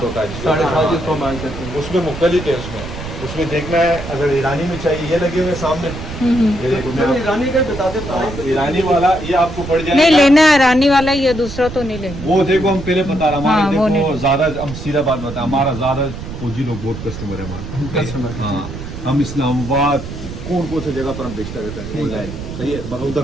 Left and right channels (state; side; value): noise; right; rumble, 10 dB below the sound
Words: होता है, 7.5 जिसको मान सकते हैं। उसमें मुख्तलिफ है। उसमें देखना है, अगर ईरानी में चाहिए ये लगे हुए सामने, ये देखो मैं ईरानी का बताते प्राइस। ईरानी वाला ये आपको पड़ जाएगा। नहीं लेना है रानी वाला, ये दूसरा तो नहीं लेंगे। वो देखो हम पहले बता रहे हाँ, वो हमारे नहीं। देखो ज्यादा, हम सीधा बात बताएं, हमारा ज्यादा फौजी लोग बहुत कस्टमर है हमारे कस्टमर। हाँ, हम इस्लामाबाद कौन से जगह पर हम बेचता रहता है ऑनलाइन, सही है, मगर